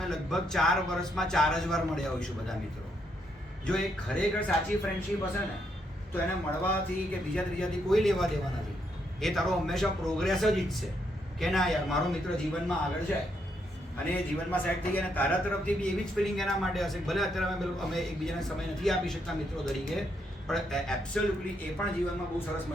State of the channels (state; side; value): normal; both; correlation 0.77